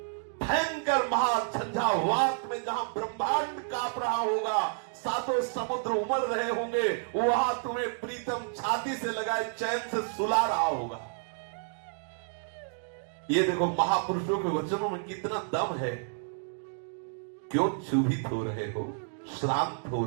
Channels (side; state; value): left; silent; digital silence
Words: भयंकर महाझंझावात में जहां ब्रह्मांड कांप रहा होगा, 7 समुद्र उमड़ रहे होंगे, वहां तुम्हें प्रीतम छाती से लगाए चैन से सुला रहा होगा। ये देखो महापुरुषों के वचनों में कितना दम है। क्यों क्षुभित हो रहे हो, श्रांत हो